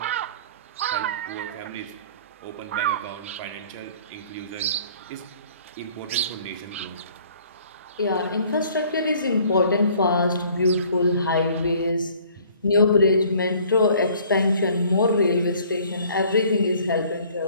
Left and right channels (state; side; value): inverted; both; correlation -0.55